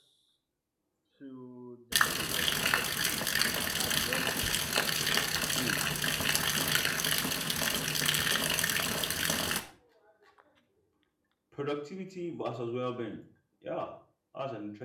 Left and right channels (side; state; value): both; identical; correlation 1.00